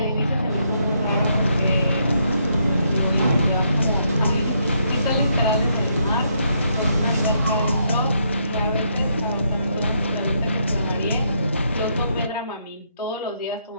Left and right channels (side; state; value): both; inverted; correlation -0.75